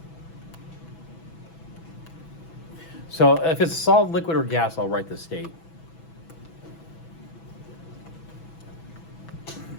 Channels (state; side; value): late; right; 6.1 ms